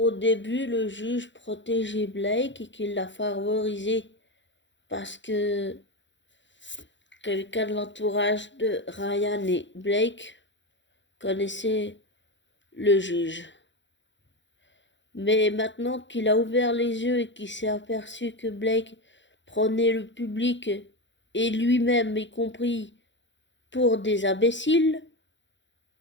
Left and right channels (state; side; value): late; right; 0.54 ms